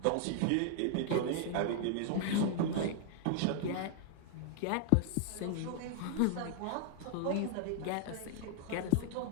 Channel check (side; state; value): both; different; correlation 0.00